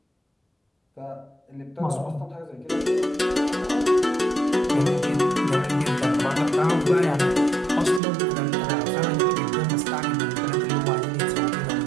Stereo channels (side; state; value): left; drops out; at 8.0 s